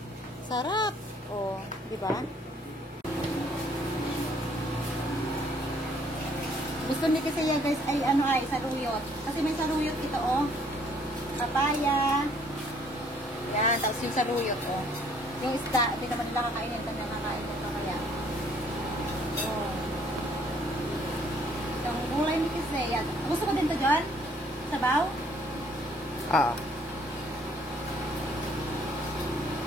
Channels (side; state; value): both; normal; correlation 0.62